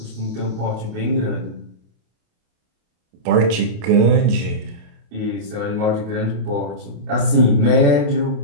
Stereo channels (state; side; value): late; left; 28 ms